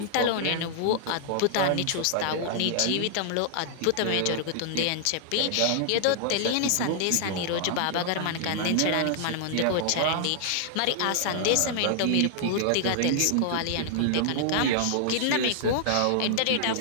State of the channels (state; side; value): different; both; correlation -0.01